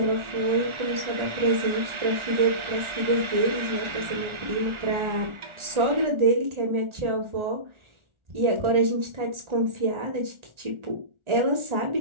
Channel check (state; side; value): late; left; 1.4 ms